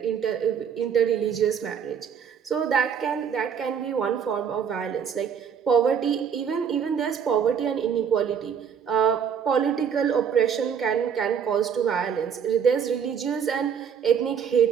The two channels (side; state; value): left; quieter; 7.5 dB